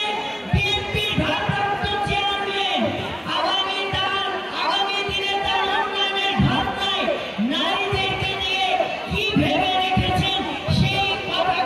বিএনপির ভারপ্রাপ্ত চেয়ারম্যান আগামী দিনে তার উন্নয়নের ভাবনায় নারীদেরকে নিয়ে কি ভেবে রেখেছেন সেই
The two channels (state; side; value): identical; both; correlation 1.00